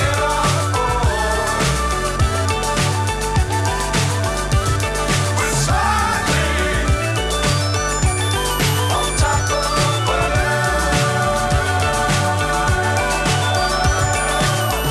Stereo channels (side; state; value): both; identical; correlation 1.00